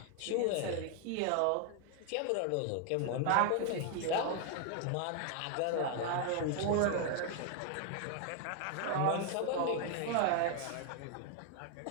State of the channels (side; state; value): both; different; correlation 0.00